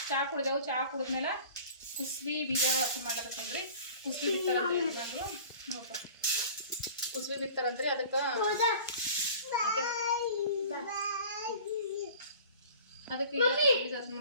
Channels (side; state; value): both; inverted; correlation -0.44